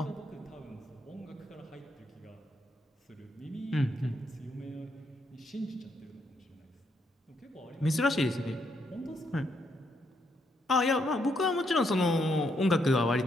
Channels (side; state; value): both; normal; correlation 0.76